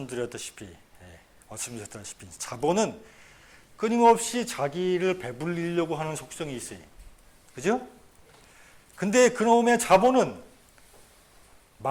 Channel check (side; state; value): both; identical; correlation 1.00